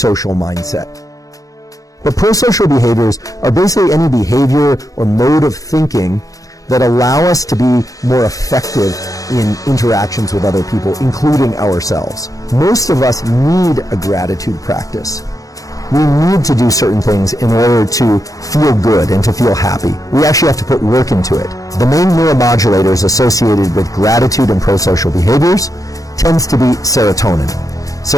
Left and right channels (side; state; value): right; late; 0.17 ms